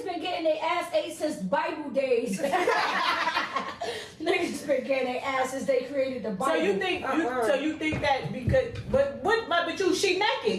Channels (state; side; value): identical; both; correlation 1.00